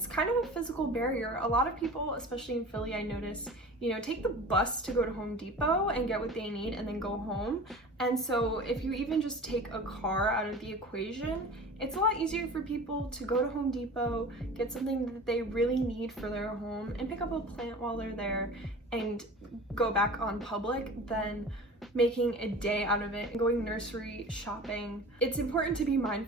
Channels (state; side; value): normal; both; correlation 0.38